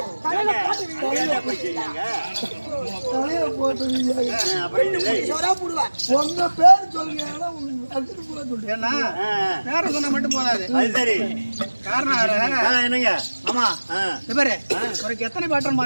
தலையில போட்டு வீதியாக உங்க பேர் சொல்லுங்க. ஏன்னா பேர சொன்னா மட்டும் போதாது. அது சரி. காரணம் என்னங்க? ஆமா இவரு ஒரு எத்தனை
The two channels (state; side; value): inverted; both; correlation -1.00